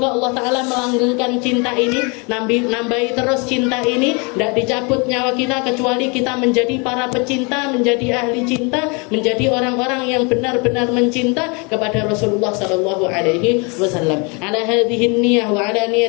Allah Ta'ala melanggengkan cinta ini, nambahi terus cinta ini, tidak dicabut nyawa kita kecuali kita menjadi para pecinta, menjadi ahli cinta, menjadi orang-orang yang benar-benar mencinta kepada Rasulullah Sallallahu Alaihi Wasallam. Ala hadhihi niyah wa ala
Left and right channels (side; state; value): right; quieter; 31.4 dB